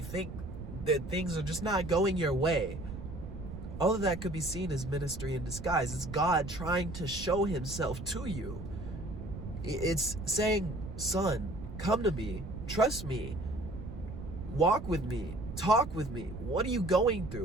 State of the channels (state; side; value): noise; right; rumble, 10 dB below the sound